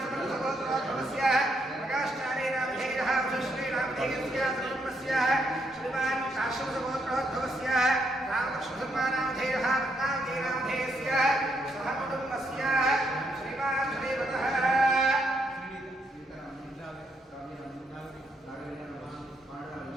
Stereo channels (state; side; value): normal; both; correlation 0.76